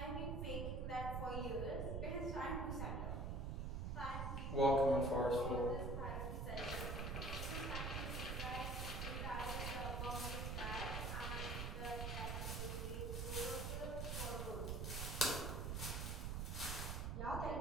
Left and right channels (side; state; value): right; noise; rumble, 1 dB below the sound